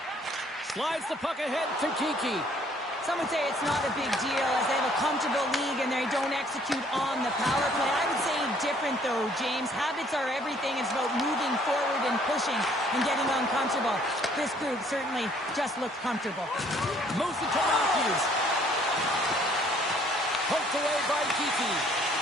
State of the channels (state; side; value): normal; both; correlation 0.61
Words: Slides the puck ahead to Kiki. Some would say it's not a big deal as they have a comfortable league and they don't execute on the power play. I would say different though, James. Habits are everything. It's about moving forward and pushing and getting uncomfortable. This group certainly just looks comfortable. Moves it to Matthews. Poked away by Kiki.